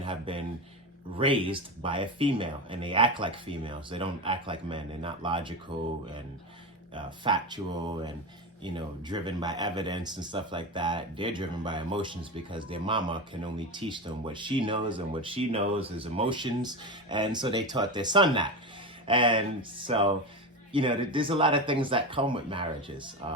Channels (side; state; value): both; normal; correlation 0.21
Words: have been raised by a female and they act like females. They don't act like men. They're not logical and factual and, you know, driven by evidence and stuff like that. They're driven by emotions because their mama can only teach them what she knows, and what she knows is emotions. And so they taught their son that. And so, you know, there's a lot of things that come with marriages.